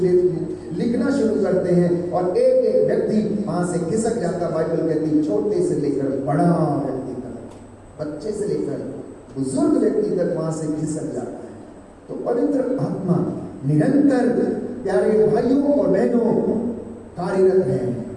लिखना शुरू करते हैं और एक एक व्यक्ति वहां से खिसक जाता। बाइबल कहती छोटे से लेकर बड़ा व्यक्ति तक, बच्चे से लेकर बुजुर्ग व्यक्ति तक वहां से खिसक जाता है। तो पवित्र आत्मा निरंतर प्यारे भाइयों और बहनों कार्यरत है।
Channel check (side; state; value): both; identical; correlation 1.00